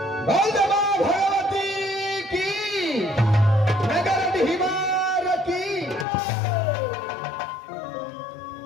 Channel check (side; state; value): right; drops out; at 6.1 s